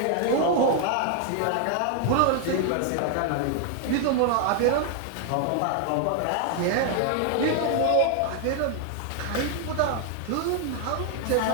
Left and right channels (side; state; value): both; different; correlation 0.00